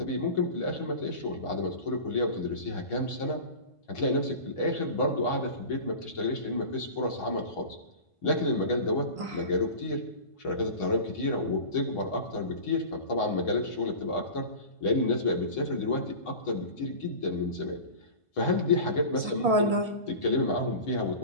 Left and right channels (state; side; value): late; right; 1.5 ms